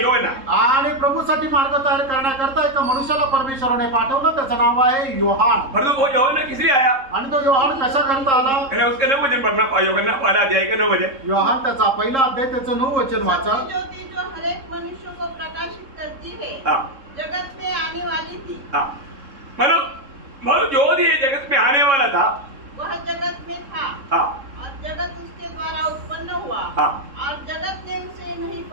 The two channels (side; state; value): left; late; 3.7 ms